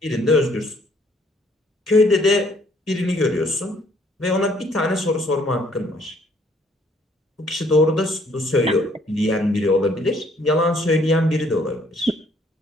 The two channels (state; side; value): normal; both; correlation 0.64